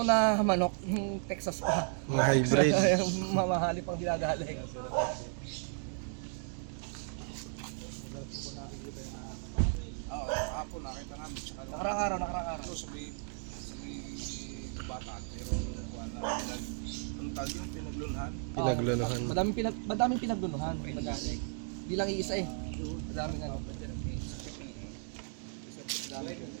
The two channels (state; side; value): silent; left; 55 dB below the other